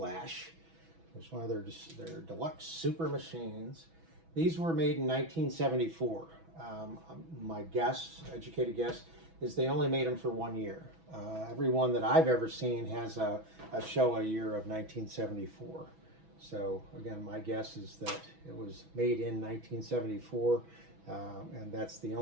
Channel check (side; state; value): left; late; 6.1 ms